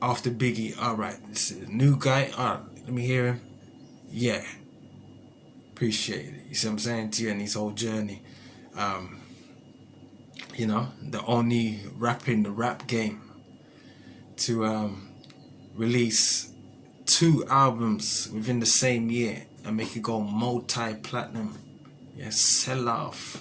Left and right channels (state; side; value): identical; both; correlation 1.00